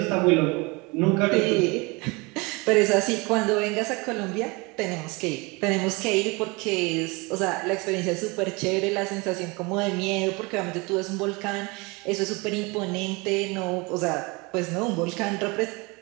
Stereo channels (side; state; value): left; quieter; 26.6 dB